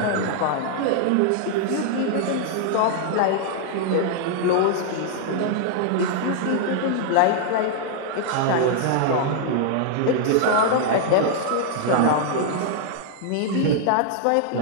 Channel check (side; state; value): both; different; correlation -0.01